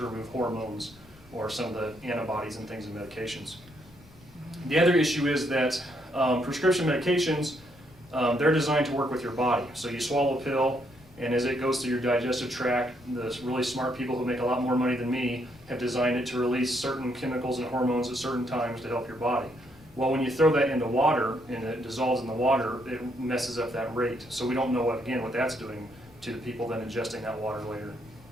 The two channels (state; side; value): noise; left; rumble, 24 dB below the sound